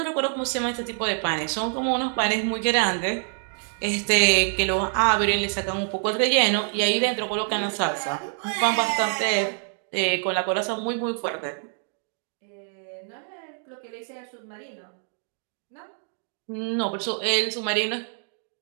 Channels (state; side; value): silent; left; 59 dB below the other